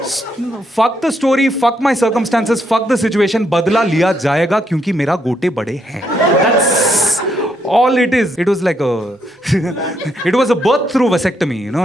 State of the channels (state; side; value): normal; both; correlation 0.76